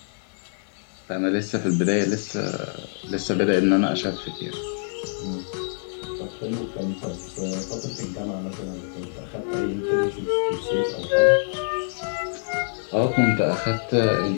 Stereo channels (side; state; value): right; silent; 59 dB below the other